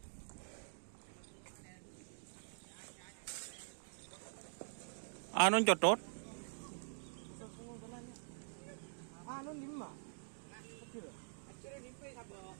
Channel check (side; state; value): left; silent; digital silence